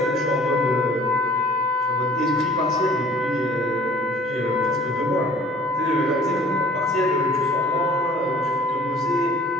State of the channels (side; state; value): both; normal; correlation 0.50